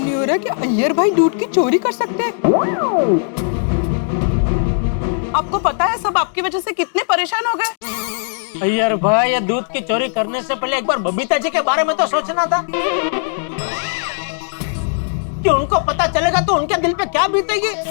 नहीं हो रहा कि अय्यर भाई दूध की चोरी कर सकते हैं। आपको पता है सब आपकी वजह से कितने परेशान हो गए। अय्यर भाई, ये दूध की चोरी करने से पहले एक बार बबीता जी के बारे में तो सोचना था कि उनको पता चलेगा तो उनके दिल पे क्या बीतेगी।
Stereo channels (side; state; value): right; silent; digital silence